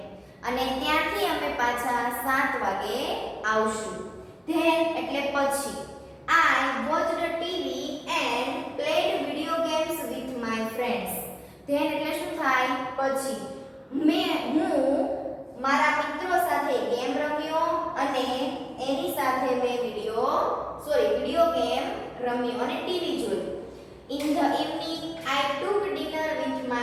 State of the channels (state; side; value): identical; both; correlation 1.00